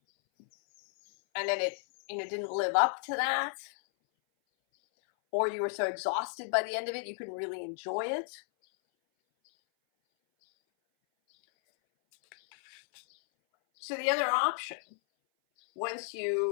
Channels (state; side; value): silent; right; 56 dB below the other